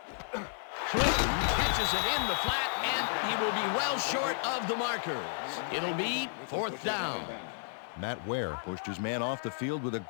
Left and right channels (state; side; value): silent; right; digital silence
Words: Catches it in the flat, and he will be well short of the markers. It'll be 4th down. Matt Ware pushed his man off the field with a